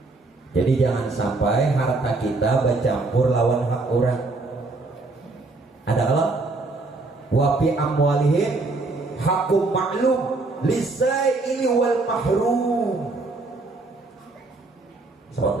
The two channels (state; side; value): quieter; left; 3.4 dB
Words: Jadi jangan sampai harta kita bercampur lawan hak orang. Ada Allah wa fi amwalihim hakum ma'lum lisaili wal mahrum. Sahabat